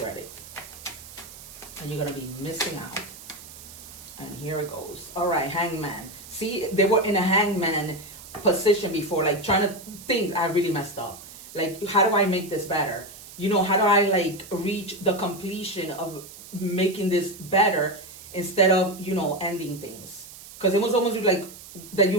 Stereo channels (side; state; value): right; noise; hiss, 16 dB below the sound